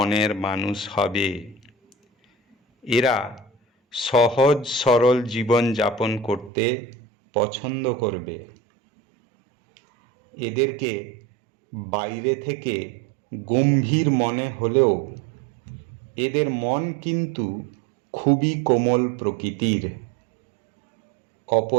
মানুষ হবে। এরা সহজ সরল জীবন যাপন করতে পছন্দ করবে। এদেরকে বাইরে থেকে গম্ভীর মনে হলেও এদের মন কিন্তু খুবই কোমল প্রকৃতির।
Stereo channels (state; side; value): drops out; left; at 6.5 s